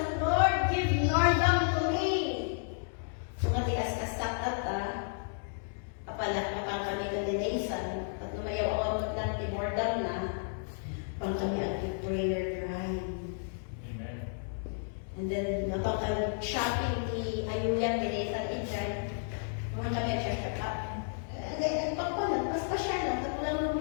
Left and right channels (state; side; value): silent; right; digital silence